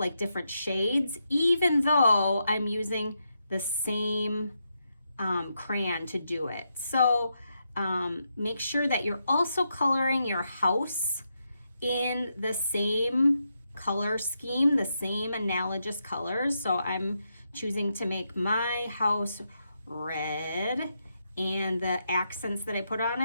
different shades, even though I'm using the same crayon to do it. So make sure that you're also coloring your house in the same color scheme, the same analogous colors. So I'm choosing to make my house red, and the accents that I put on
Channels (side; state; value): both; inverted; correlation -0.83